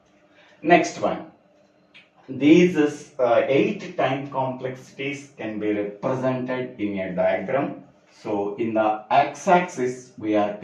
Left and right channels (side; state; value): both; identical; correlation 1.00